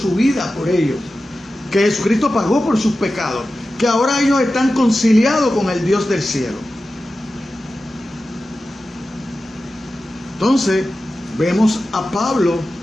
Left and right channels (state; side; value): normal; both; correlation 0.93